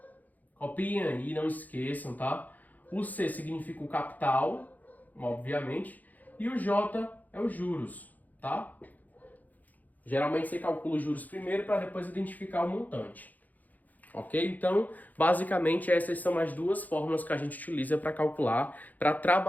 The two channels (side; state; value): right; late; 0.081 ms